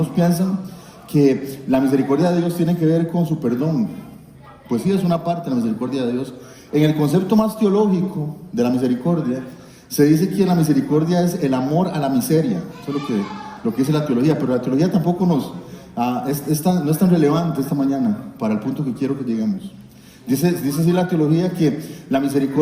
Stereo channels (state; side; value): identical; both; correlation 1.00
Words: piensan, que la misericordia de Dios tiene que ver con su perdón. Pues sí, es una parte de la misericordia de Dios. En el concepto más teológico de la misericordia, se dice que la misericordia es el amor a la miseria. Eso es lo que dice la teología, pero la teología tampoco no es tan relevante esta mañana para el punto que quiero que lleguemos. Dice así la teología que la